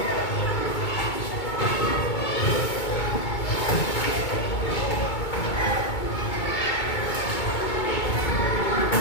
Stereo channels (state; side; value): late; right; 2.2 ms